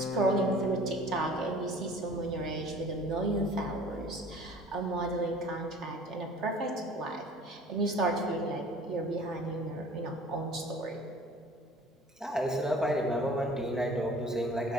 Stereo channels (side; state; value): both; normal; correlation 0.48